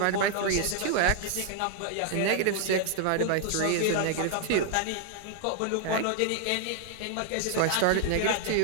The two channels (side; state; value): both; different; correlation 0.00